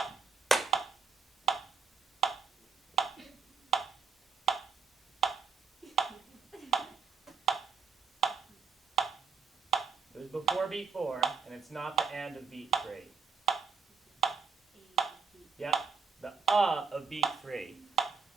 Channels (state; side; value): quieter; left; 5.6 dB